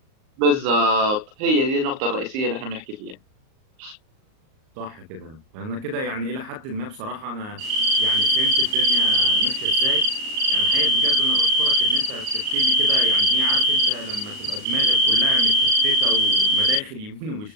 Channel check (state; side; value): late; left; 38 ms